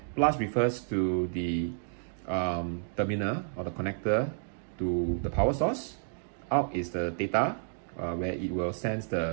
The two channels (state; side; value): silent; left; digital silence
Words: Plus refers to the terminal or the connector to the power source. Out is the data, where it will sense